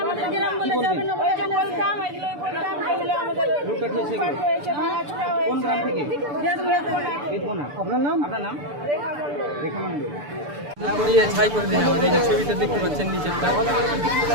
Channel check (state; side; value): late; left; 6.9 ms